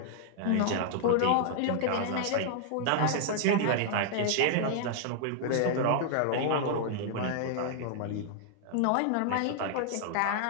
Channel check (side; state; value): both; different; correlation -0.01